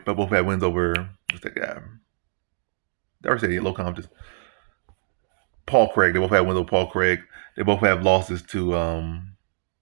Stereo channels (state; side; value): silent; left; digital silence